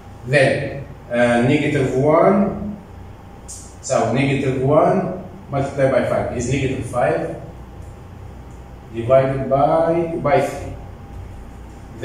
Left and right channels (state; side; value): identical; both; correlation 1.00